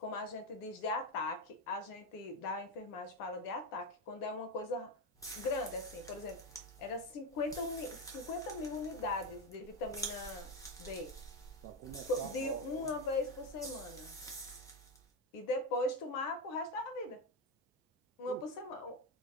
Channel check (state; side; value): normal; both; correlation 0.12